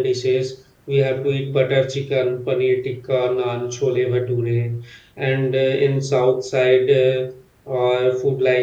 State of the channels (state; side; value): identical; both; correlation 1.00